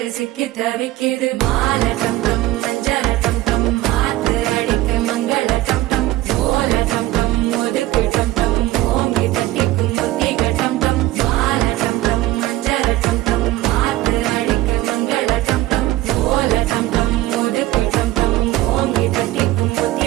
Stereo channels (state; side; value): quieter; left; 16.9 dB